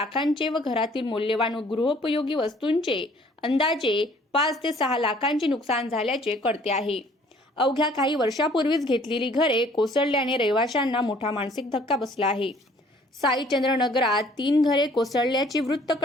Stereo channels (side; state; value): both; normal; correlation 0.57